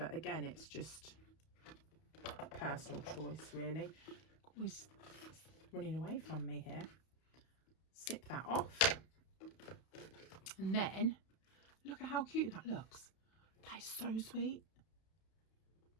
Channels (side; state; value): right; late; 32 ms